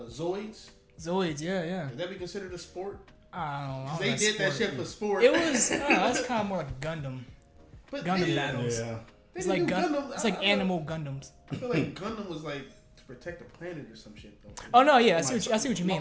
Zoids. Zoids, yeah. Would that be considered a sport? I don't know. They did that shit for sport. It was. That's kind of more like Gundam. But Gundam yeah, battles. Yeah. It's like Gundam. It's like animal Gundams. I feel like Gundam was like to protect the planet or some shit though. Oh no, yeah, I see what you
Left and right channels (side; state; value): both; identical; correlation 1.00